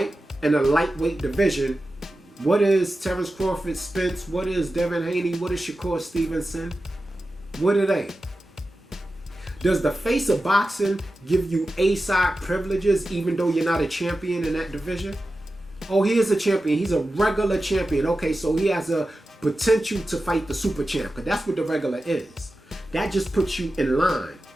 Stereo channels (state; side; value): normal; both; correlation 0.93